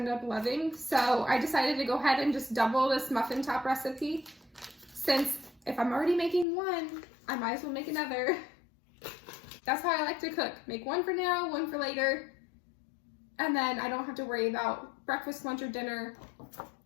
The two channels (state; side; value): drops out; right; at 6.5 s